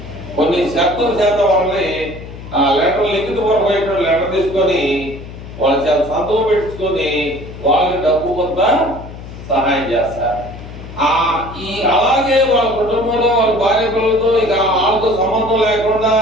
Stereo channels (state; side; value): noise; left; hum, 13 dB below the sound